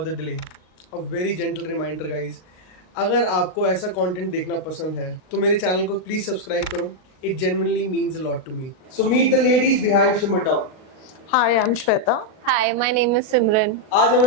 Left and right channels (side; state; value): right; late; 38 ms